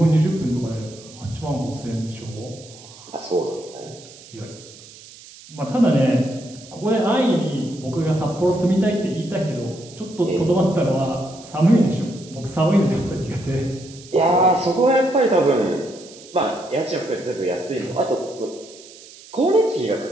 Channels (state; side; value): noise; right; hiss, 20 dB below the sound